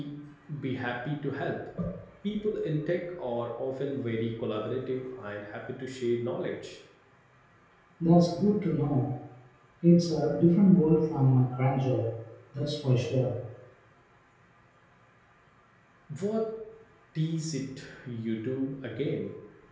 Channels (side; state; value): both; identical; correlation 1.00